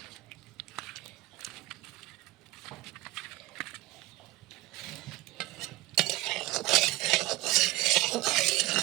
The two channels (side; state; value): left; quieter; 19.1 dB